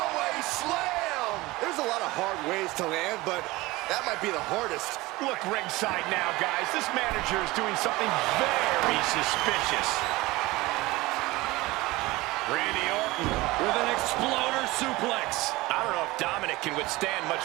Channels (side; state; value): left; quieter; 20.5 dB